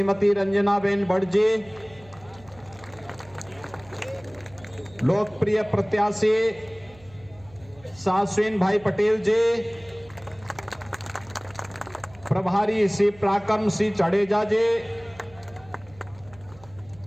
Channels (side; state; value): right; noise; hum, 24 dB below the sound